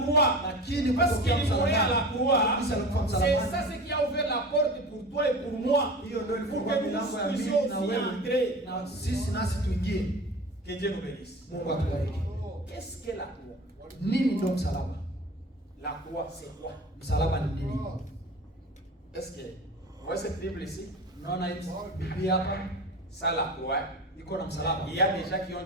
croix, Lakini parce qu'il kutokea mourait à la msalabani, croix, kabisa alikufa c'est msalabani. ça ce qui a ouvert la porte pour toi et pour moi. Hiyo ndio Pour ilifungua que nous milango ya puissions mimi na aussi wewe entrer. na sisi nasi tuingie. Que Dieu nous bénisse. Mungu atubariki. Qu'est-ce que la croix? Nini ndio msalaba? La croix, c'est quoi? Msalaba ni nini? Est-ce que vous voyez cette Bible ici? Unaona hii Biblia hapa Ça, la croix. iko na msalaba. Il y a des gens qui ont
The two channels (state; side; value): normal; both; correlation 0.35